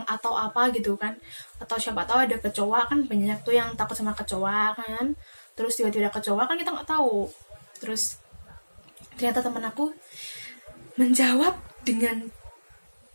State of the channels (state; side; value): inverted; both; correlation -1.00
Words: atau apa gitu kan, atau siapa tahu ada kecoa, kan banyak tuh yang takut sama kecoa kan, terus tiba-tiba ada kecoa kan kita nggak tahu. Terus ternyata teman aku menjawab